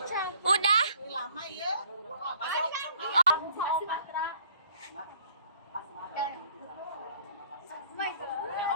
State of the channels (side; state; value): both; inverted; correlation -0.58